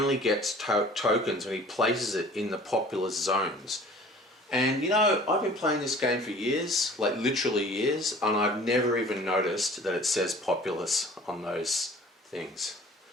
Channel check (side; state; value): both; normal; correlation 0.48